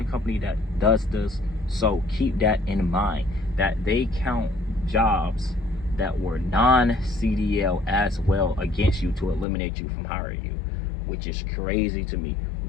company that does this. So keep that in mind, that they count jobs that were non-CDL as well against you to eliminate you from hiring you, which is crazy to me.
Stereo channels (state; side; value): drops out; right; at 9.5 s